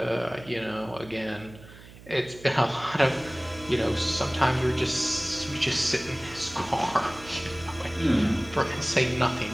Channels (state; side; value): noise; right; hum, 19 dB below the sound